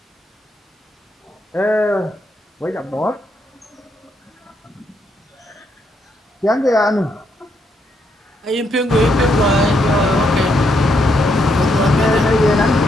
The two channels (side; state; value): both; normal; correlation 0.77